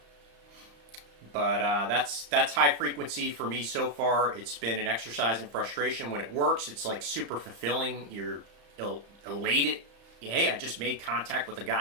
But that's high frequency for me so far. It's been an exercise in frustration. When it works, it's like super fulfilling. You're elated. Hey, I just made contact with a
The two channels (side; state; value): left; late; 35 ms